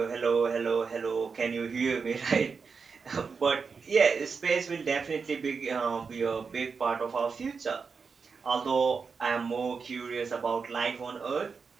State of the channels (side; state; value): left; quieter; 5.3 dB